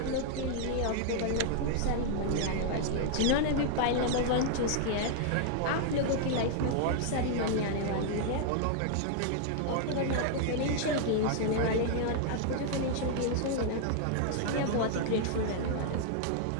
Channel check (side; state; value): both; different; correlation 0.00